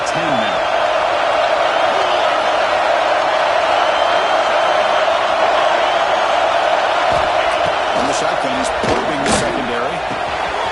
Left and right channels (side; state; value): both; identical; correlation 1.00